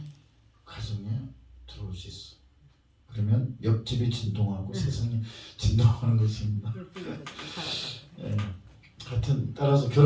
가정에 들어올 수 있어. 그러면 옆집이 진동하고 세상이 진동하는 것입니다. 예. 따라서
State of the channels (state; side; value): identical; both; correlation 1.00